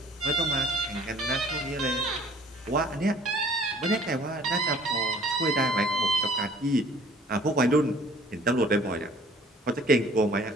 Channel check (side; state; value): both; normal; correlation 0.54